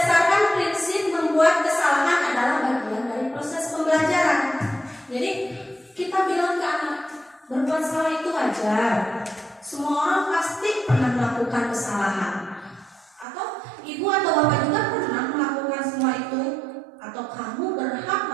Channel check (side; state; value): left; drops out; at 13.2 s